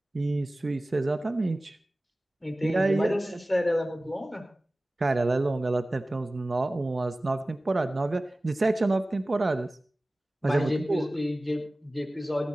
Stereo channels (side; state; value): both; normal; correlation 0.97